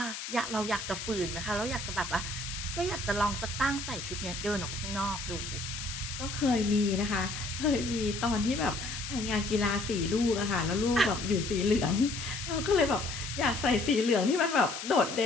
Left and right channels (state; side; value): noise; left; hiss, 7 dB below the sound